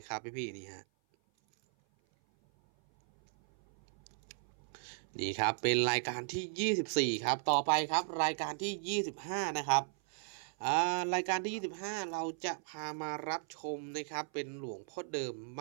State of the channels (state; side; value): silent; left; 54 dB below the other